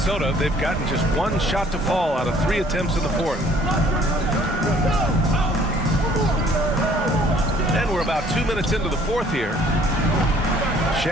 they've gotten just 1 shot to fall out of 3 attempts in the 4th. And we're about 2 minutes into the 4th here.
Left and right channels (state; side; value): normal; both; correlation 0.57